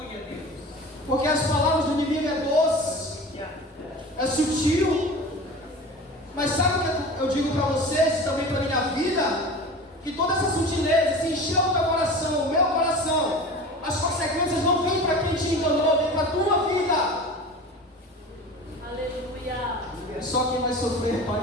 porque as palavras do inimigo é doce, é sutil. Mas sabe o que eu digo para vocês, também para a minha vida? Que toda essa sutileza se encheu o teu coração, o meu coração. As consequências não vêm para quem te enganou, vêm para a tua vida. Aleluia. É só quem vai sofrer, pai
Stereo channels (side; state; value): both; normal; correlation 0.35